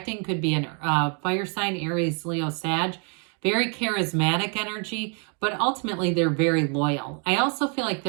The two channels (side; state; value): left; quieter; 39.1 dB